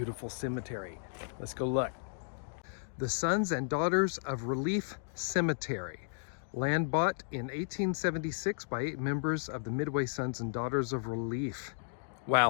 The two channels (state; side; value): silent; right; digital silence